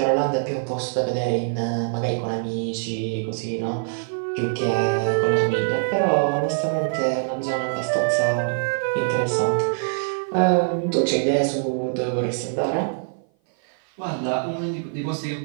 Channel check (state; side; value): silent; left; 57 dB below the other